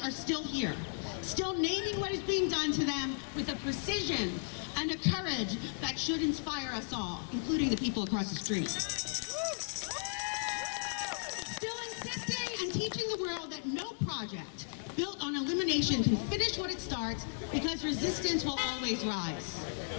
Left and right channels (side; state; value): right; silent; digital silence